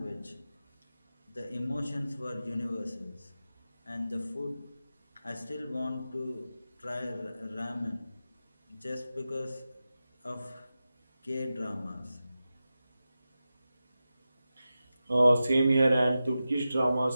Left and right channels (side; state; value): both; inverted; correlation -0.93